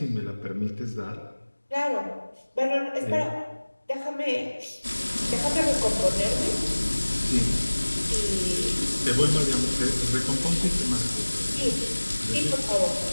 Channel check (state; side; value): inverted; both; correlation -1.00